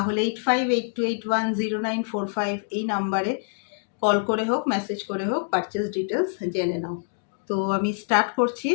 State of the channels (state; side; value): silent; right; digital silence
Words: 8582810945 এই নাম্বারে কল করে হোক, মেসেজ করে হোক, পারচেস ডিটেলস জেনে নাও। তো আমি স্টার্ট করছি